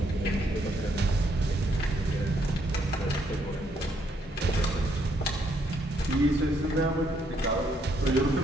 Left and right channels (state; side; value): normal; both; correlation 0.72